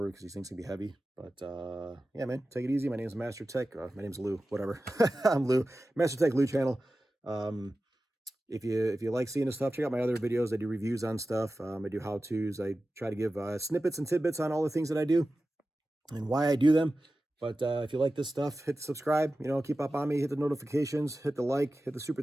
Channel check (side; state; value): both; normal; correlation 0.94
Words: because these things can be heavy. But yeah, man, take it easy. My name is Master Tech. My name's Lou, whatever. I'm Lou. Master Tech Lou channel. If you like seeing this stuff, check out my other videos. I do reviews on stuff. I do how-tos. I try to give snippets and tidbits on all the things that I do and why I do them. But if you like this stuff, hit subscribe. You know, keep up on me. Hit the notifications. Hit the like. Hit the super